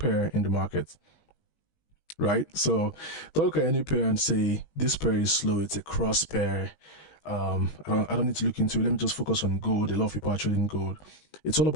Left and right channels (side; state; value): right; late; 20 ms